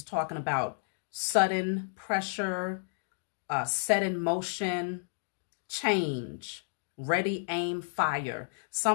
talking about sudden pressure, set in motion, change, ready, aim, fire.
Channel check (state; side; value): silent; right; digital silence